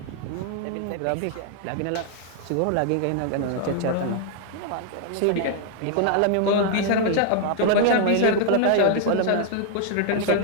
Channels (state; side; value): different; both; correlation -0.01